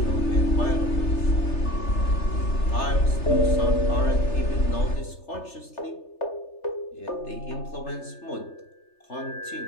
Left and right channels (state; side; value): late; right; 3.3 ms